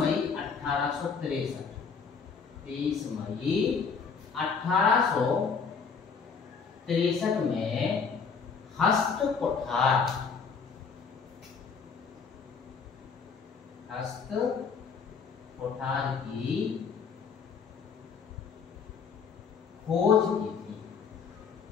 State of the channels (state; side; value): quieter; right; 5.7 dB